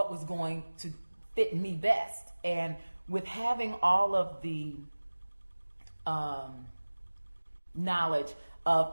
was going to fit me best. And with having all of the knowledge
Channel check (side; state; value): both; inverted; correlation -1.00